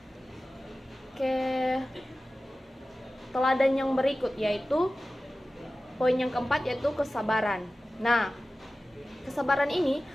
ke teladan yang berikut, yaitu poin yang keempat, yaitu kesabaran. Nah, kesabaran ini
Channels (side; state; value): both; normal; correlation 0.96